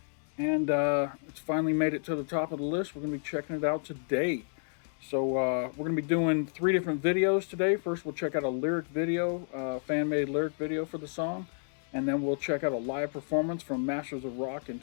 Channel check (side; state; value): right; silent; digital silence